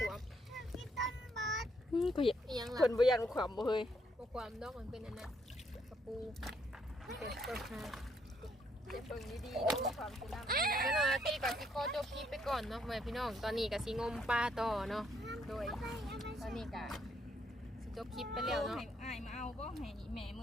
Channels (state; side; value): normal; both; correlation 0.72